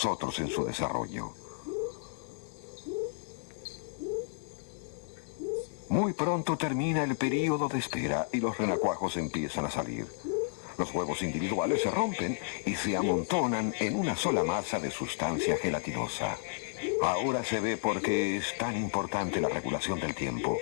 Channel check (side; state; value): right; silent; 56 dB below the other